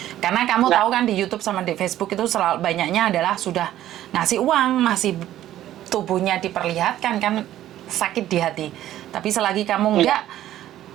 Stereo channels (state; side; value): quieter; left; 13.0 dB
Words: Karena kamu tahu kan di YouTube sama di Facebook itu selalu banyaknya adalah sudah ngasih uang, masih tubuhnya diperlihatkan kan, sakit di hati. Tapi selagi kamu enggak,